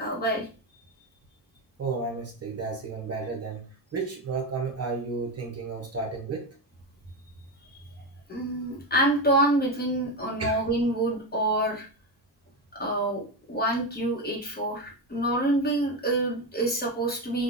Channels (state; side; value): normal; both; correlation 0.14